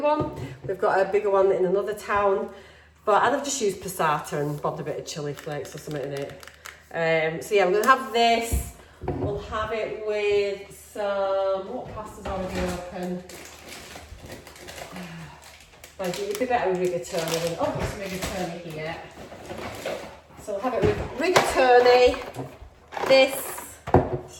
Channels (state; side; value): identical; both; correlation 1.00